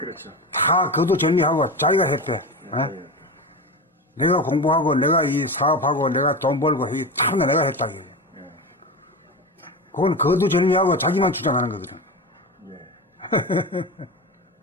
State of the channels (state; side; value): normal; both; correlation 0.24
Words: 다 그도 정리하고 자기가 했대. 예. 내가 공부하고, 내가 이 사업하고, 내가 돈 벌고, 이 참 내가 했다. 이게. 그건 그도 정리하고 자기만 주장하는 거거든. 예.